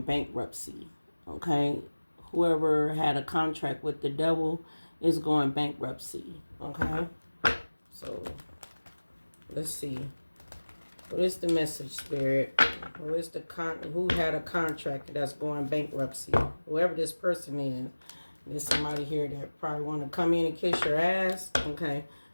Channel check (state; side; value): inverted; both; correlation -1.00